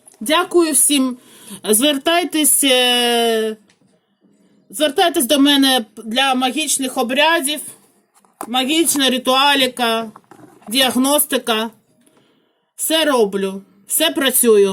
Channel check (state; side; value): identical; both; correlation 1.00